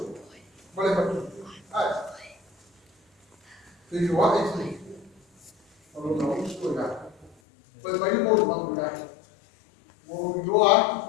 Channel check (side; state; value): right; drops out; at 7.4 s